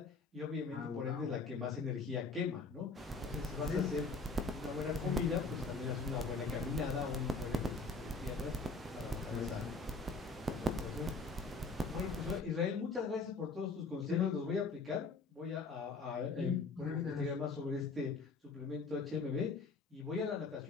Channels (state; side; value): quieter; right; 3.9 dB